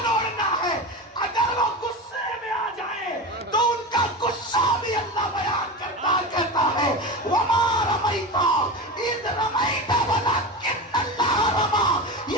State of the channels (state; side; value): normal; both; correlation 0.25